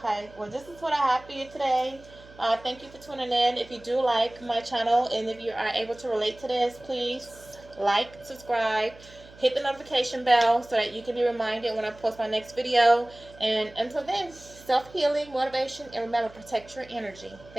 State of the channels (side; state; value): right; noise; hum, 22 dB below the sound